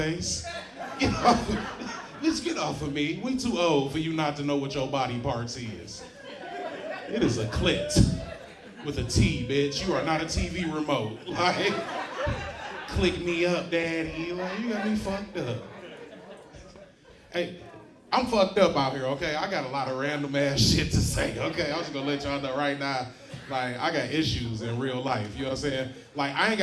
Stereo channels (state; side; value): identical; both; correlation 1.00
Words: Get off of me. Bitch, get off of me. We too old for you not to know what your body parts is. It is a clit with a T, bitch. You are not a TV remote. Like, click me up, daddy. Like, you got me fucked up. Hey, I'm fucked up out here, okay? I got a lot of random ass shit to say, okay? I'm just gonna let y'all know right now, like, I got issues in real life, you know what I'm saying? Like, I ain't